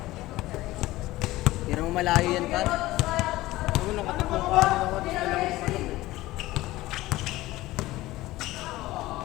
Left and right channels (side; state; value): right; quieter; 17.7 dB